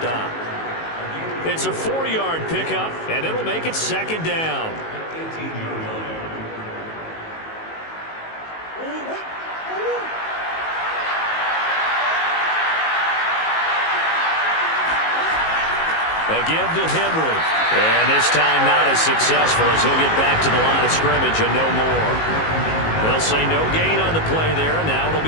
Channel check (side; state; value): right; late; 19 ms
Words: It's a 4-yard pickup and it'll make it second down. A give to Henry. And this time not as successful as he'll get back to the line of scrimmage and no more. They'll say no gain on the play there, and now it'll